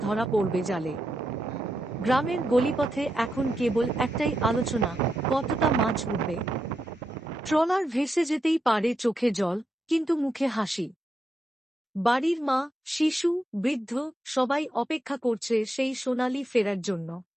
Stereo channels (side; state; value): both; normal; correlation 0.84